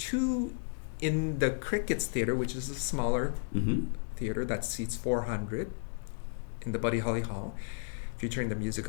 in the Crickets Theater, which is a smaller theater that seats 400 in the Buddy Holly Hall, featuring the music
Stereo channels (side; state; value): right; silent; digital silence